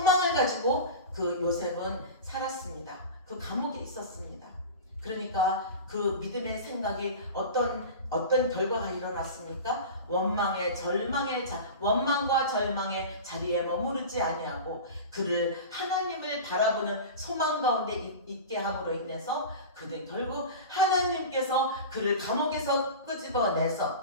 가지고 그 요셉은 살았습니다. 그 감옥에 있었습니다. 그러니까 그 믿음의 생각이 어떤 결과가 일어났습니까? 원망과 절망의 자리에 머무르지 아니하고 그를 하나님을 바라보는 소망 가운데 있게 함으로 인해서 그는 결국 하나님께서 그를 감옥에서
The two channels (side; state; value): both; inverted; correlation -0.30